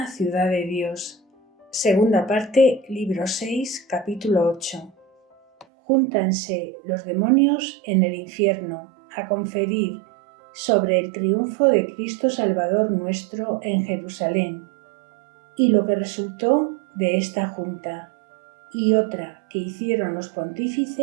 Ciudad de Dios. Segunda parte, libro 6, capítulo 8. Júntanse los demonios en el infierno a conferir sobre el triunfo de Cristo Salvador nuestro en Jerusalén, y lo que resultó de esta junta, y otra que hicieron los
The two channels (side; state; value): left; drops out; at 5.7 s